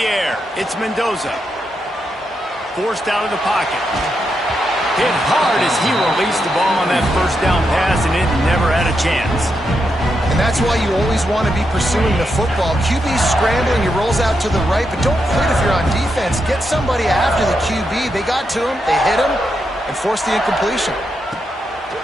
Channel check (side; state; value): both; normal; correlation 0.83